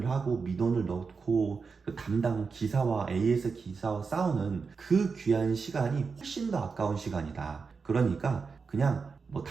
하고 민원을 넣고 그 담당 기사와 AS 기사와 싸우는 그 귀한 시간이 훨씬 더 아까운 시간이다. 그러니까 그냥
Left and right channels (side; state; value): left; quieter; 5.0 dB